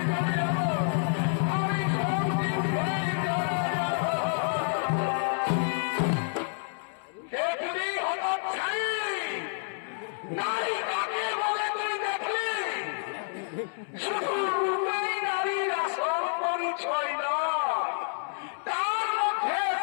যাবে, আমি সত্যি হয়ে যাবে। দেখলি হঠাৎ ছাই নারী কাকে বলে তুই দেখলি? শুধু রূপেই নারীর আসল পরিচয় নয়, তার মধ্যে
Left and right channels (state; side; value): silent; right; 59 dB below the other